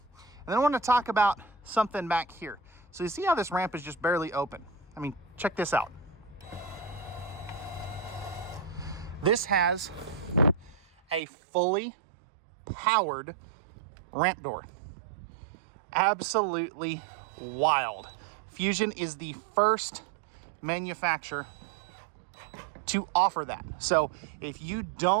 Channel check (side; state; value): left; drops out; at 11.2 s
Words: And then I want to talk about something back here. So you see how this ramp is just barely open? I mean, check this out. This has a fully powered ramp door. Absolutely wild. Fuzion is the first manufacturer to offer that. So if you